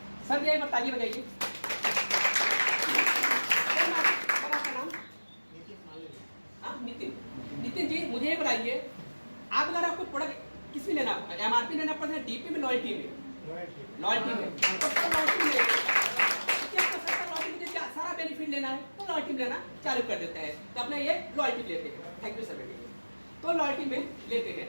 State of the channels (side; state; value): both; inverted; correlation -1.00